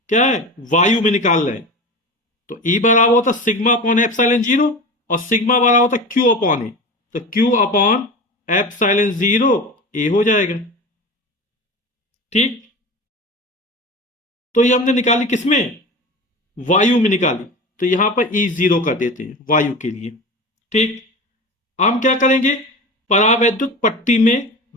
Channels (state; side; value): normal; both; correlation 0.30